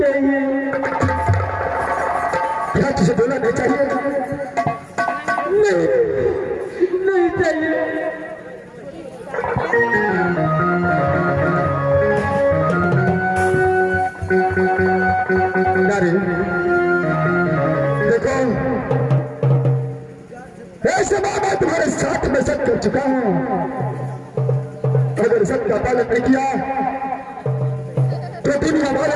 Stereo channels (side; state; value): both; identical; correlation 1.00